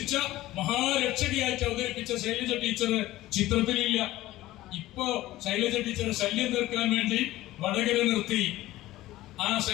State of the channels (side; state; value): right; quieter; 16.3 dB